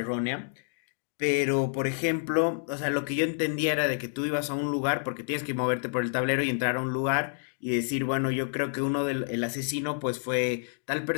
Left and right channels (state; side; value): silent; right; digital silence